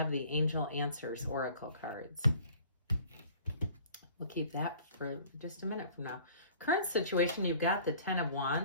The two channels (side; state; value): both; inverted; correlation -0.50